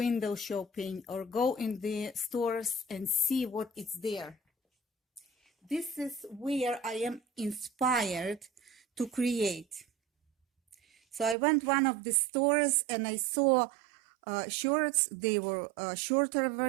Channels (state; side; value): drops out; left; at 11.4 s